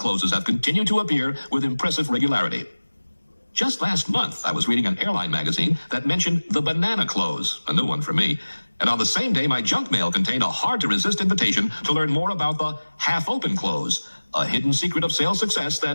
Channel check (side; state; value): both; inverted; correlation -1.00